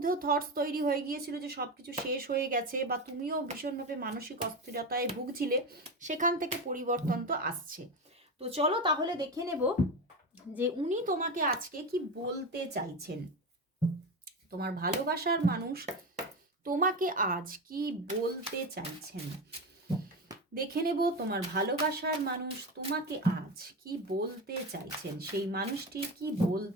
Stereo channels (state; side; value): normal; both; correlation 0.19